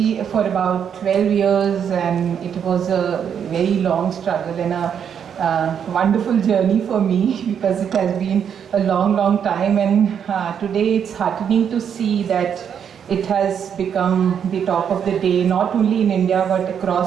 for about 12 years, and it was a very long struggle and a wonderful journey for me because it has been a long, long time, and today it's heartening to see that It has become the talk of the day, not only in India but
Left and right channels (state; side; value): quieter; left; 8.0 dB